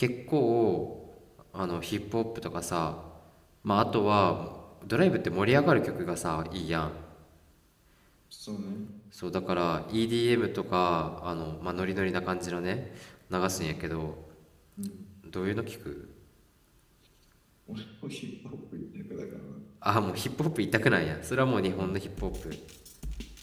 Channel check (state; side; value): identical; both; correlation 1.00